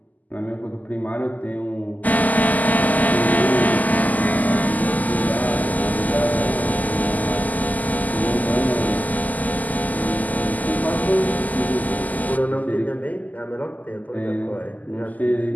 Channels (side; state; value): right; late; 0.079 ms